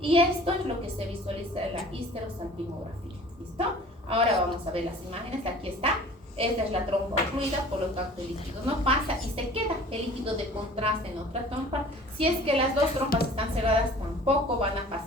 esto es lo que se visualiza en la histerosalpingografía. ¿Listo? Ahora vamos a ver las imágenes. Aquí está. Esta es la trompa ocluida, por lo tanto el líquido no pasa y se queda el líquido de contraste en otra trompa. Si es que las dos trompas están cerradas, tampoco van a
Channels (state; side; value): normal; both; correlation 0.47